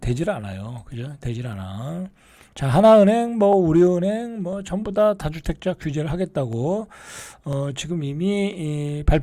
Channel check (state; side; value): identical; both; correlation 1.00